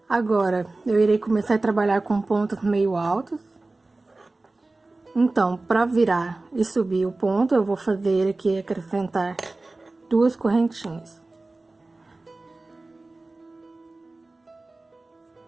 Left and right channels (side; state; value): left; quieter; 3.2 dB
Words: Agora, eu irei começar a trabalhar com pontos meio altos. Então, para virar e subir o ponto, eu vou fazer aqui, acrescentar 2 correntinhas.